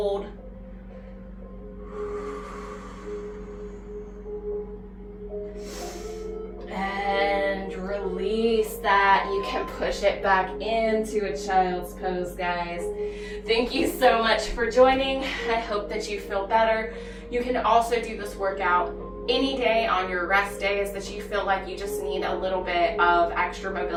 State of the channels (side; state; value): both; identical; correlation 1.00